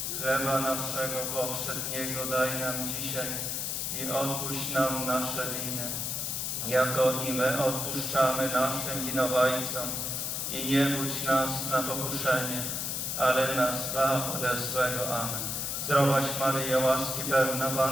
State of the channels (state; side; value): noise; left; hiss, 2 dB below the sound